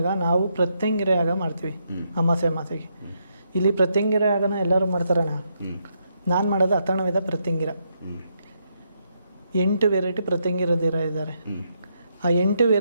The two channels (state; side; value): inverted; both; correlation -0.78